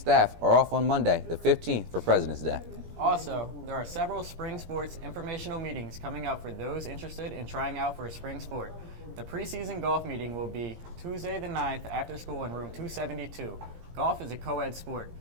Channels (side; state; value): left; late; 17 ms